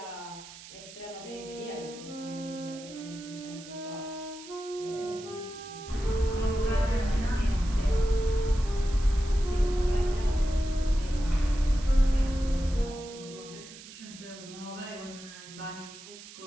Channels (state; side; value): noise; right; hiss, 16 dB below the sound